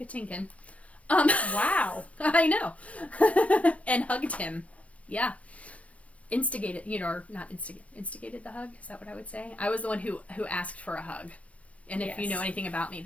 Wow. I know, and hugged him. Yeah, instigated. Or not instigated the hug. Is that what I would say? I was the one who asked for a hug. And if you know anything about me,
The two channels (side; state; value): right; late; 0.064 ms